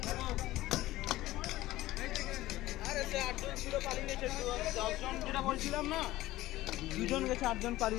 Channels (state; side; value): quieter; right; 16.5 dB